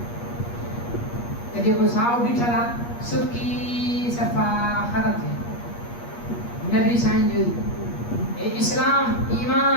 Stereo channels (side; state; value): right; late; 8.4 ms